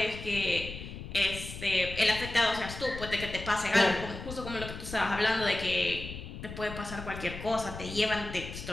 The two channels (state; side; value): noise; left; rumble, 10 dB below the sound